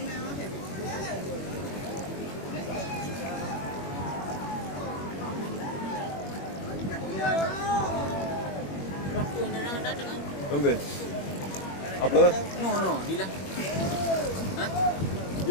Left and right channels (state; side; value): late; right; 21 ms